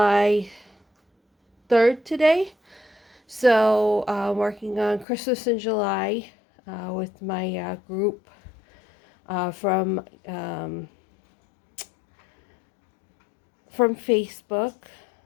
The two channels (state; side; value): drops out; right; at 5.1 s